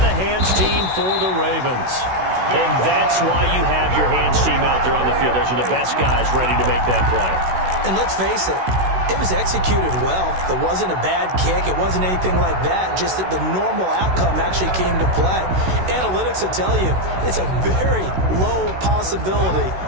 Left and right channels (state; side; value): late; left; 16 ms